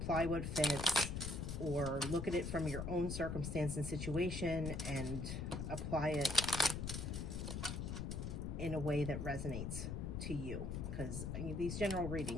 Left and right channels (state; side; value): noise; left; rumble, 3 dB below the sound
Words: what fits, or look at it from your own circumstance and situation and apply it in a way that resonates to you. Because these general